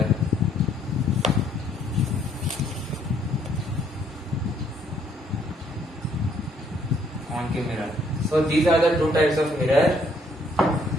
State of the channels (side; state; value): both; normal; correlation 0.66